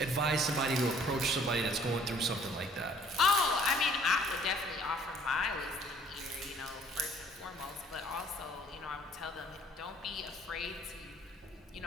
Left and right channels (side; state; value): both; normal; correlation 0.58